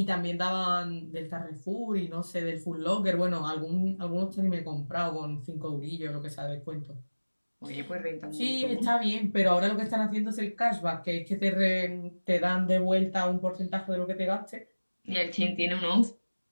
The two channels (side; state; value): both; inverted; correlation -1.00